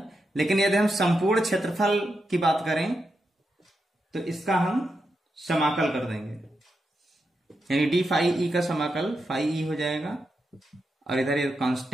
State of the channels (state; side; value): normal; both; correlation 0.86